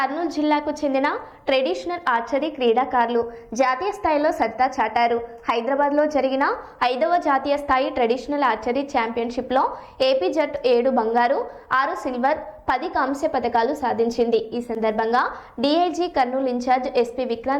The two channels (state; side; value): identical; both; correlation 1.00